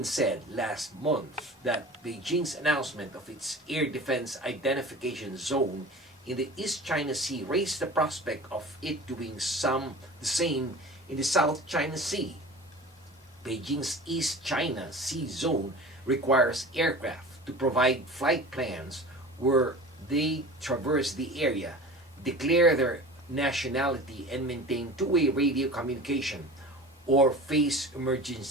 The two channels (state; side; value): normal; both; correlation 0.38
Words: said last month that Beijing's announcement of its air defense identification zone in the East China Sea raised the prospect of it doing the same in the South China Sea. Beijing's East China Sea zone requires aircraft to provide flight plans where they traverse the area, declare their nationality, and maintain 2-way radio communication or face